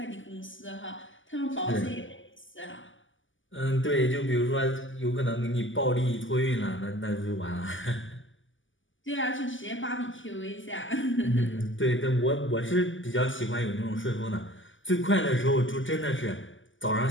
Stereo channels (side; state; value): right; late; 0.56 ms